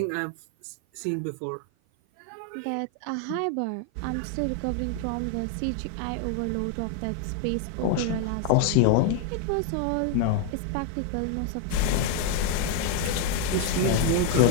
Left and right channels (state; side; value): different; both; correlation 0.00